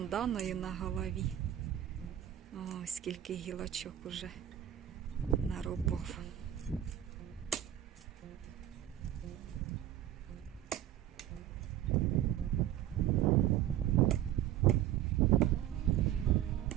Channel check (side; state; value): left; quieter; 12.1 dB